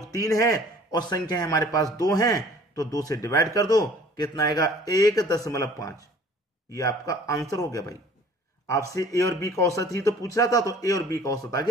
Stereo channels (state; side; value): normal; both; correlation 0.51